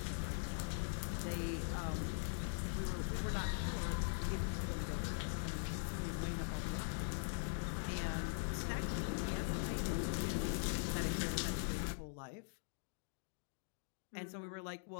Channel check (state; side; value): silent; right; digital silence